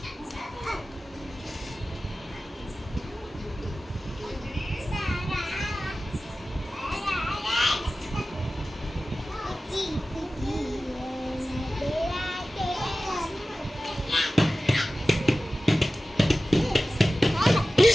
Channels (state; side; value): normal; both; correlation 0.95